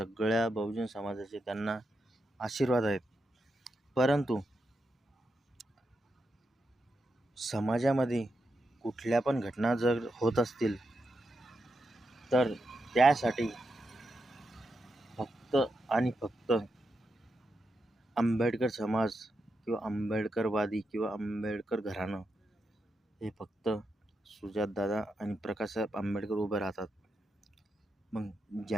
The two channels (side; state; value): both; normal; correlation 0.86